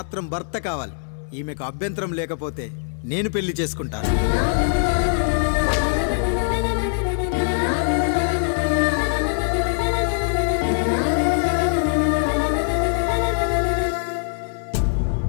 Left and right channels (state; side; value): silent; right; 64 dB below the other